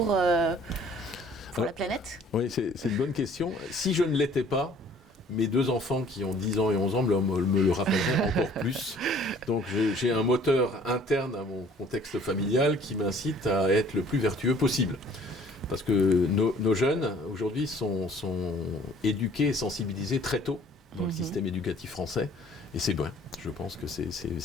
la planète ? Oui, c'est une bonne question. Si je ne l'étais pas, mes deux enfants qui ont 10 ans et 11 ans me le rappelleraient encore plus. Donc j'ai un moteur interne à mon contexte familial qui m'incite à être le plus vertueux possible. Parce que nos jeunes, aujourd'hui, sont éduqués et sensibilisés très tôt dans le système éducatif français. Et c'est bien. Je pense que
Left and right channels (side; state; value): both; normal; correlation 0.54